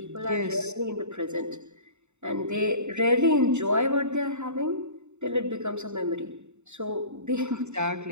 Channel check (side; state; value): left; late; 0.83 ms